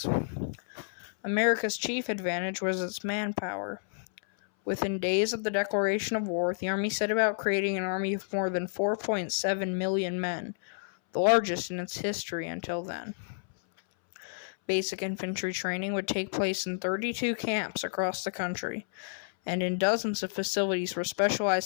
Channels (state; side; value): silent; right; 58 dB below the other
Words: America's chief advantage was its manpower. Within days of the declaration of war, the Army set about creating an army of more than 4.7 million men, the largest in its history until then. Basic infantry training would take place in 32 camps across the country, and in dozens of facilities where